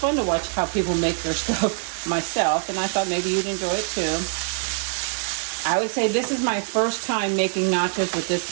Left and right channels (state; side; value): silent; left; digital silence